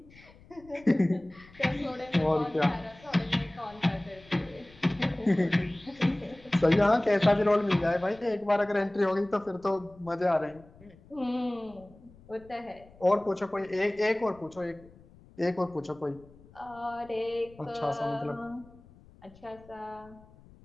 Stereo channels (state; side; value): noise; left; rumble, 24 dB below the sound